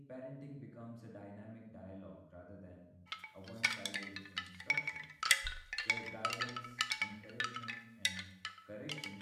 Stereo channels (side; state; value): both; identical; correlation 1.00